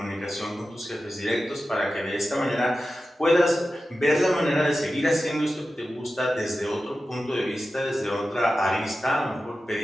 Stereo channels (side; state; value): both; normal; correlation 0.93